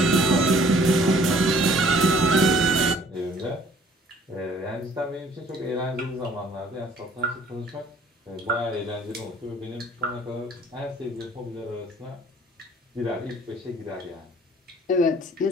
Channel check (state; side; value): normal; both; correlation 0.56